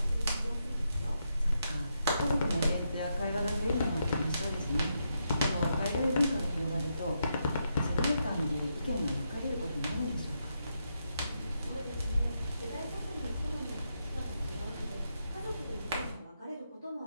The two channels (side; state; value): both; inverted; correlation -0.82